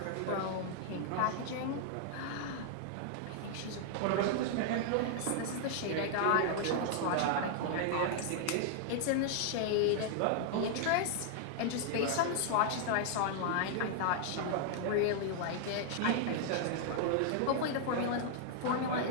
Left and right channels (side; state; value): both; different; correlation -0.01